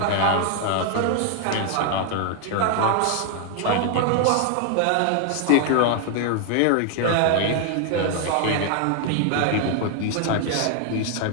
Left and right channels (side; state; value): both; different; correlation 0.00